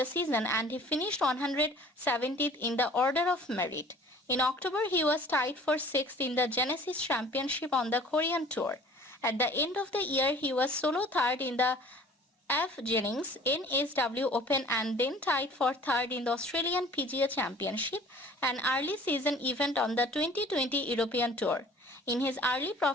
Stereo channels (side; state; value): both; normal; correlation 0.49